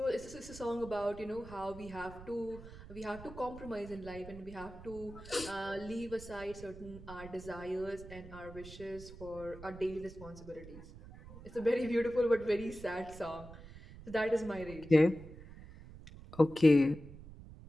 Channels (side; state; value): right; noise; rumble, 16 dB below the sound